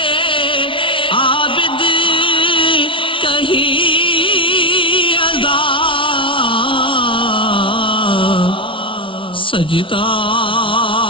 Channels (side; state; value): right; late; 0.25 ms